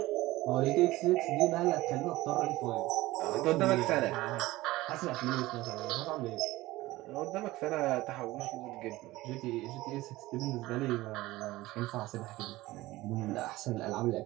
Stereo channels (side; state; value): left; quieter; 18.3 dB